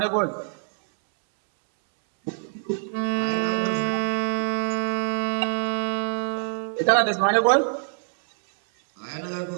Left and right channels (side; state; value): left; silent; 62 dB below the other